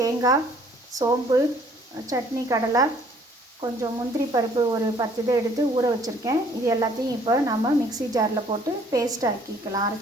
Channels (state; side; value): normal; both; correlation 0.59